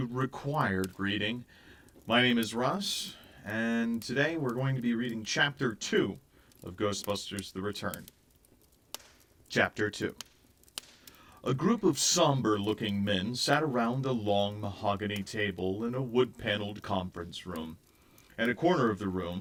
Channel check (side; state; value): both; identical; correlation 1.00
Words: Required Reading. My name is Russ, and today we're going to be reading Chapter 2 of Ghostbusters The Return. Chapter 2. A group of somber-looking men sat around a long mahogany table in a wood-paneled conference room. At a corner of the